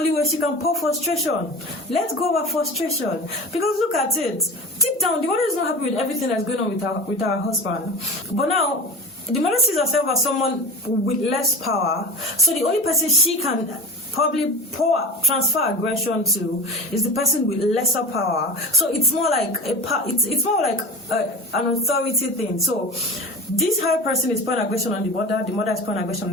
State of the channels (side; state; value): both; normal; correlation 0.33